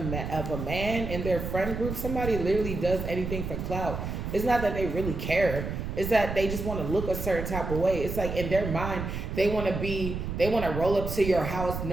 of a man in their friend group. Somebody literally does anything for clout. It's not that they really care. It's that they just want to look a certain type of way. It's like in their mind, they want to roll up to your house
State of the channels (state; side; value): noise; right; rumble, 5 dB below the sound